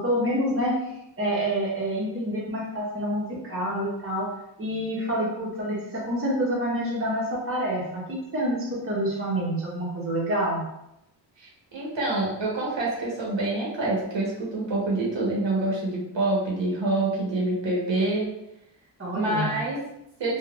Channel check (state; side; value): normal; both; correlation 0.14